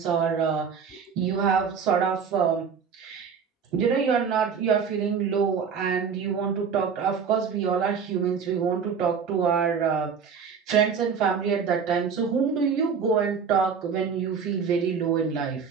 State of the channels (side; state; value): left; quieter; 6.3 dB